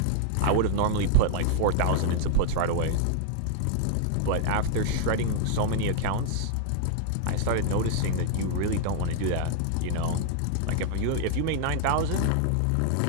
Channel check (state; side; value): different; both; correlation 0.00